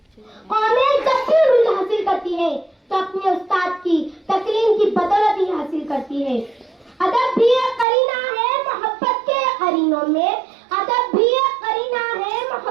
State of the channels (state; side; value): drops out; left; at 7.9 s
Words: कौमें जब भी उरूज हासिल करती है तो अपने उस्ताद की तकरीम की बदौलत ही हासिल करती है। अदब भी एक करीना है मोहब्बत के करीनों में, अदब भी एक करीना है